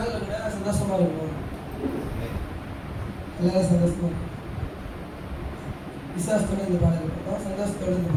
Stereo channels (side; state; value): both; identical; correlation 1.00